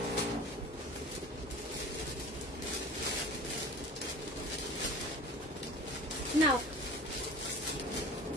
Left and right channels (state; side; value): normal; both; correlation 0.39